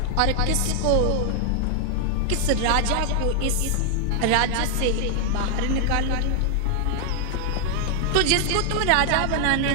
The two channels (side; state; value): both; different; correlation 0.00